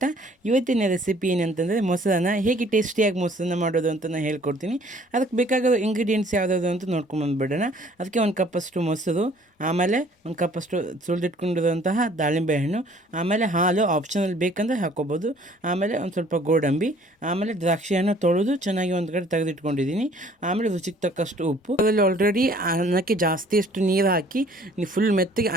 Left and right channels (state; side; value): normal; both; correlation 0.56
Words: ಇವತ್ತಿನ ರೆಸಿಪಿ ಏನಂತಂದರೆ ಮೊಸರನ್ನ ಹೇಗೆ ಟೇಸ್ಟಿಯಾಗಿ ಮೊಸರನ್ನ ಮಾಡೋದು ಅಂತ ನಾನು ಹೇಳ್ಕೊಡ್ತೀನಿ. ಅದಕ್ಕೆ ಬೇಕಾಗಿರೋ ಇಂಗ್ರೀಡಿಯೆಂಟ್ಸ್ ಯಾವುದಾದ್ರು ಅಂತ ನೋಡ್ಕೊಂಬಂದುಬಿಡೋಣ. ಅದಕ್ಕೆ 1 ಕಪ್ಪಷ್ಟು ಮೊಸರು, ಆಮೇಲೆ 1 ಕಪ್ಪಷ್ಟು ಸುಲಿದಿಟ್ಕೊಂಡಿರುವಂತಹ ದಾಳಿಂಬೆ ಹಣ್ಣು, ಆಮೇಲೆ ಹಾಲು ಆಪ್ಷನಲ್ ಬೇಕಂದರೆ ಹಾಕ್ಕೋಬೋದು, ಆಮೇಲೆ ಒಂದು ಸ್ವಲ್ಪ ಗೋಡಂಬಿ, ಆಮೇಲೆ ದ್ರಾಕ್ಷಿ ಹಣ್ಣು ತೊಳೆದು ಚೆನ್ನಾಗಿ ಒಂದು ಕಡೆ ತೆಗೆದಿಟ್ಕೊಂಡಿದ್ದೀನಿ, ಆಮೇಲೆ ರುಚಿಗೆ ತಕ್ಕಷ್ಟು ಉಪ್ಪು. ಅದರಲ್ಲಿ ಆಲ್ರೆಡಿ ಅನ್ನಕ್ಕೆ ಜಾಸ್ತಿಯಷ್ಟು ನೀರು ಹಾಕಿ ಫುಲ್ ಮೆತ್ತಗೆ